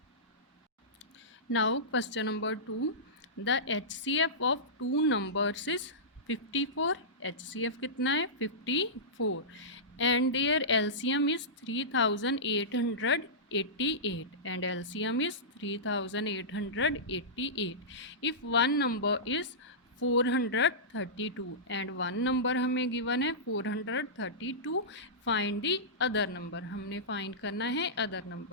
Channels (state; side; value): normal; both; correlation -0.17